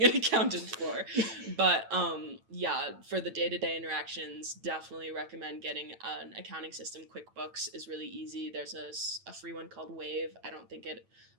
an accountant for. But for the day-to-day interactions, definitely recommend getting an accounting system. QuickBooks is really easy. There's a free one called Wave. I don't think it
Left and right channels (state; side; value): late; left; 8.9 ms